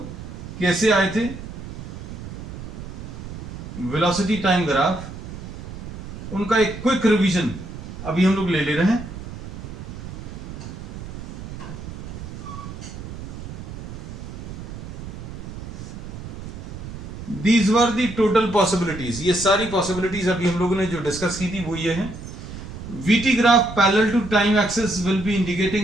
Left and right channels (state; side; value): noise; right; rumble, 10 dB below the sound